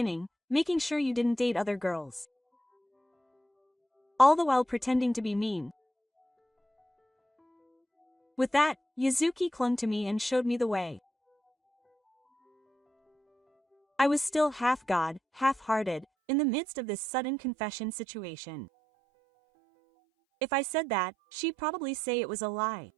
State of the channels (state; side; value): drops out; left; at 16.1 s